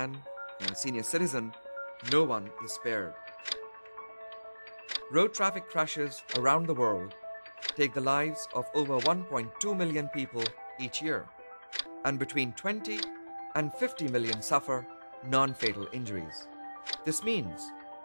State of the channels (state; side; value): inverted; both; correlation -1.00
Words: a senior citizen, no one is spared. Road traffic crashes around the world take the lives of over 1.2 million people each year, and between 20 and 50 million suffer non-fatal injuries. This means